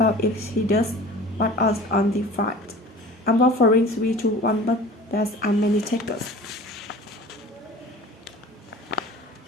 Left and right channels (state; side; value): normal; both; correlation 0.42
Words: if he does? What odds on the fight? I'm offering 3-1, but there's many takers.